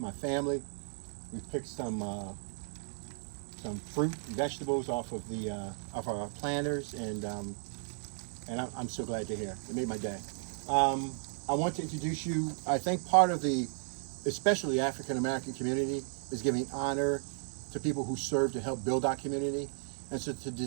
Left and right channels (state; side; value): silent; left; 55 dB below the other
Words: family. We picked some fruit, vegetables off of the off our planters, and I'm so glad to hear. It made my day. I want to introduce you. I think part of the, especially African American community, is giving honor to people who serve to help build our community. And so